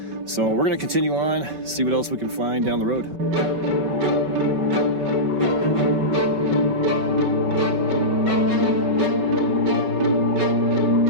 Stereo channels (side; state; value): left; late; 5.3 ms